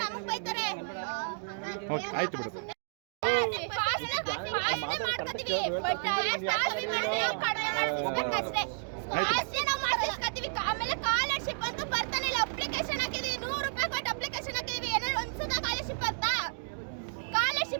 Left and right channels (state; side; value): silent; left; digital silence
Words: ನಮಗ್ ಬೈತಾರೆ. ಓಕೆ, ಆಯ್ತು ಬಿಡು. ಪಾಸ್ನೆ ಮಾಡ್ಕೊತೀವಿ ಬಟ್ ಕಡಿಮೆ ಮಾಡಿಸ್ಬೇಕಷ್ಟೇ. ಪಾಸ್ನೆ ನಾವು ಮಾಡಿಸ್ಕೊತೀವಿ. ಆಮೇಲೆ ಸ್ಕಾಲರ್ಶಿಪ್ ಅಂತ ಬರ್ತಾನಿಲ್ಲ. ಅಪ್ಲಿಕೇಶನ್ ಹಾಕಿದೀವಿ, 100 ರೂಪಾಯಿ ಕೊಟ್ಟು ಅಪ್ಲಿಕೇಶನ್ ಹಾಕಿದೀವಿ. ಏನಾದ್ರು ಒಂದ್ಸಲ ಸ್ಕಾಲರ್ಶಿಪ್ ಬರ್ತಾ?